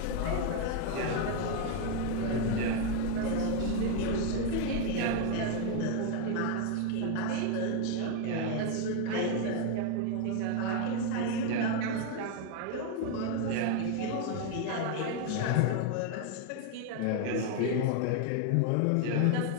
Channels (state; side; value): different; both; correlation 0.01